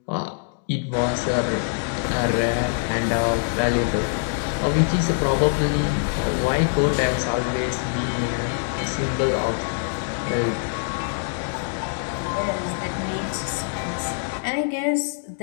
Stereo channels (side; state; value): right; silent; digital silence